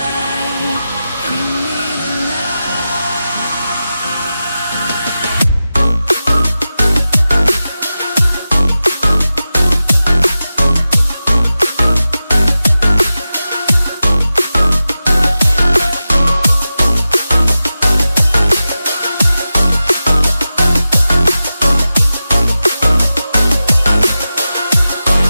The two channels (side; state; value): both; inverted; correlation -0.93